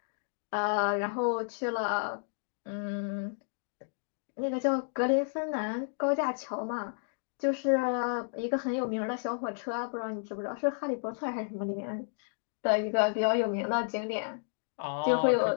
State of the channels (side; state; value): right; silent; digital silence